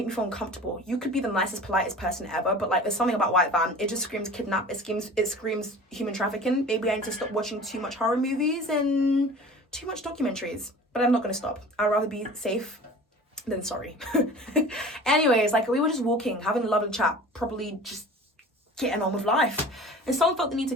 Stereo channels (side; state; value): both; normal; correlation 0.41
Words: me feel uncomfortable. You could be the nicest, politest person ever, but like there's something about white van. It just screams kidnap. It screams human trafficking. Maybe I need to stop watching too much horror movies and too much documentaries. But I'm not gonna stop. I'd rather be safe than sorry. Anyways, like we were just walking, having a lovely chat, probably just getting on with life. And someone felt the need